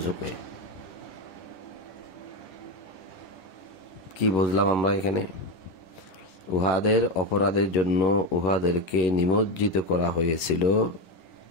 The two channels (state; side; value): late; right; 11 ms